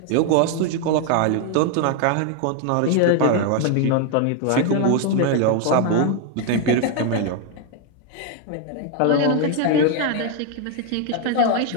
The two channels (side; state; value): both; different; correlation 0.01